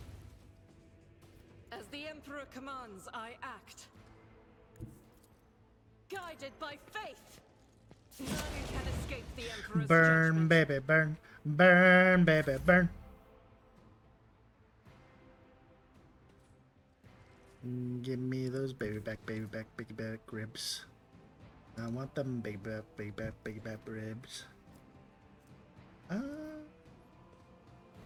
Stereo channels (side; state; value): both; identical; correlation 1.00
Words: As the Emperor commands, I act. Guided by faith! None can escape the Emperor's Burn, judgment. baby, burn. Burn, baby, burn. Give me those baby back ribs. I want them baby back ribs.